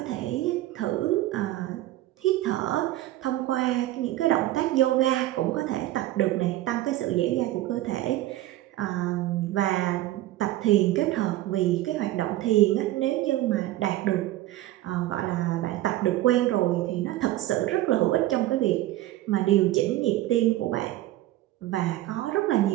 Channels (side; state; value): left; quieter; 15.6 dB